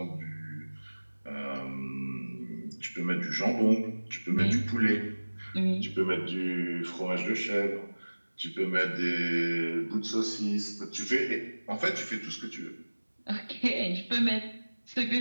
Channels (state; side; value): inverted; both; correlation -1.00